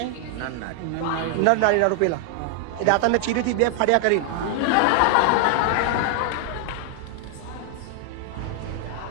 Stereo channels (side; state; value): both; different; correlation 0.00